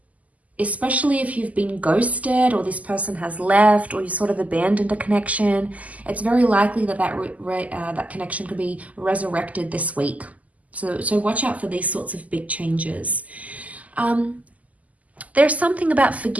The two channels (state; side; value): late; left; 0.074 ms